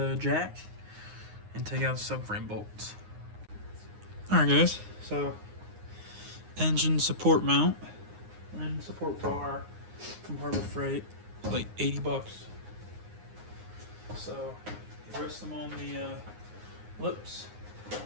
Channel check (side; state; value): left; late; 9.6 ms